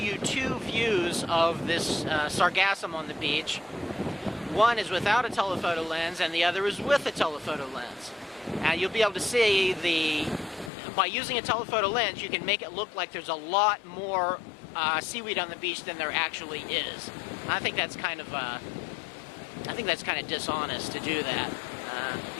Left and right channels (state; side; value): drops out; right; at 10.7 s